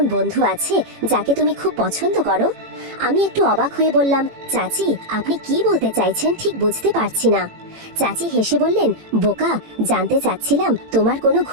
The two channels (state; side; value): late; left; 18 ms